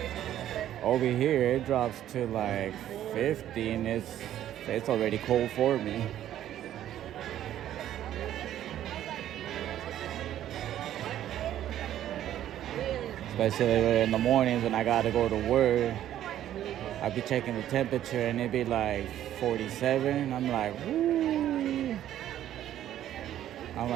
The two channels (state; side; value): quieter; left; 11.9 dB